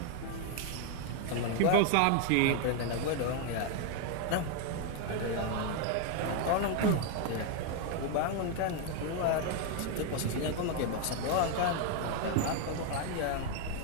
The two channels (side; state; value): both; different; correlation 0.01